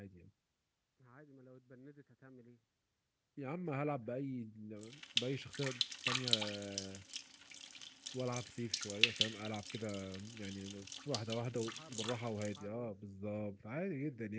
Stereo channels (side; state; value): both; identical; correlation 1.00